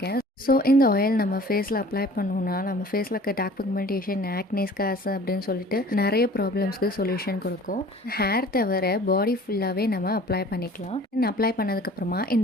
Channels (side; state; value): both; normal; correlation 0.48